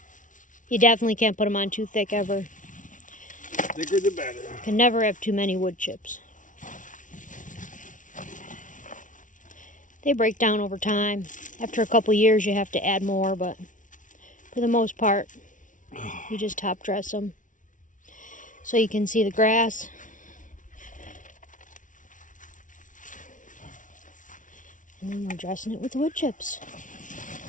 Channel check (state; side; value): late; right; 0.37 ms